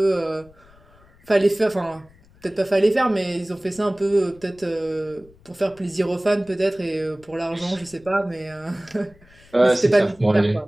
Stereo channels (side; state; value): left; noise; rumble, 27 dB below the sound